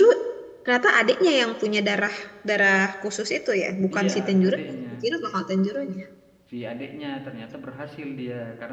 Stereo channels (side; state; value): both; identical; correlation 1.00